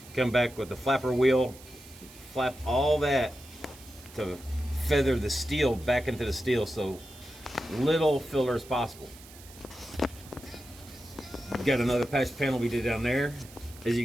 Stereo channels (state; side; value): noise; right; hiss, 20 dB below the sound